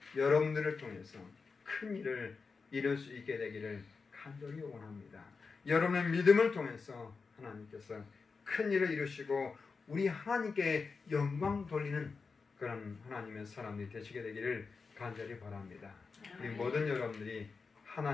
여러분들을 통해서 큰 일을 이룰 수 있게 되기를 간절히 원합니다. 여러분의 믿음을 통해서 하나님께서 큰 일을 이루시고 우리 하나님께 영광 돌리는 그런 하나님의 사람이 되시게 되기를 간절히 바랍니다. 우리 모든 여러분들이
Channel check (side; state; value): right; quieter; 4.7 dB